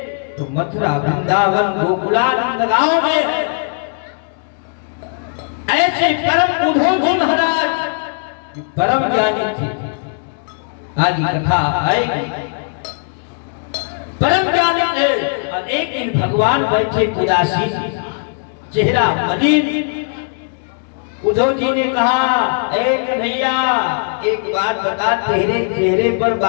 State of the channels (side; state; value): right; silent; digital silence